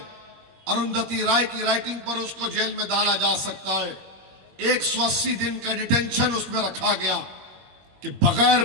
अरुंधति राय की राइटिंग पर उसको जेल में डाला जा सकता है। 180 दिन का डिटेंशन उसमें रखा गया कि बगैर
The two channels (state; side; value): late; left; 21 ms